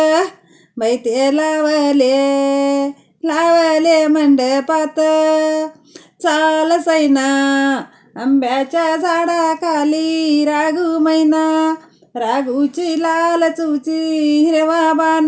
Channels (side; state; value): both; identical; correlation 1.00